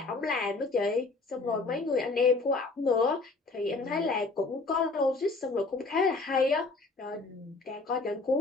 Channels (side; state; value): right; quieter; 3.6 dB